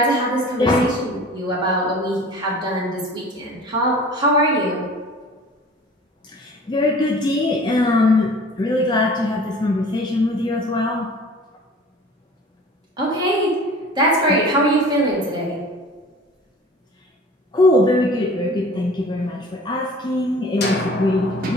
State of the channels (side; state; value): both; normal; correlation 0.44